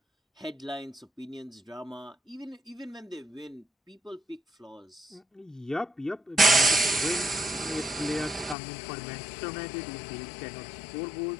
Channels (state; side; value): drops out; right; at 8.6 s